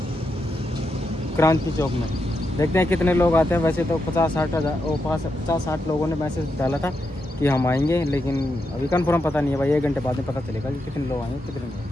क्रांति चौक में। देखते हैं कितने लोग आते हैं। वैसे तो 50-60 लोगों ने मैसेज डाला था कि हम आएंगे, लेकिन अभी कंफर्म पता नहीं है भाई। 1 घंटे बाद में पता चलेगा कि कितने लोग आएंगे कितने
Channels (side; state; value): both; normal; correlation 0.84